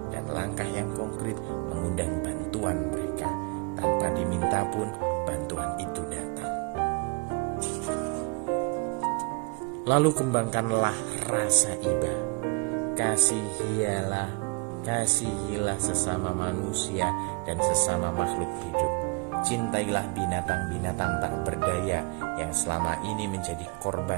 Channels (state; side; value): quieter; left; 30.9 dB